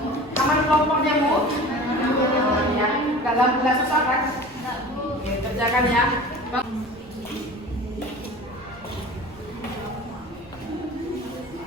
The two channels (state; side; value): noise; right; rumble, 25 dB below the sound